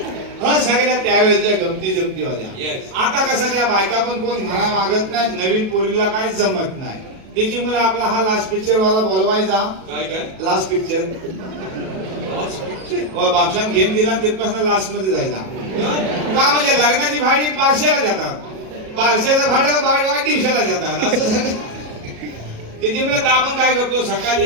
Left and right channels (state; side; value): late; left; 37 ms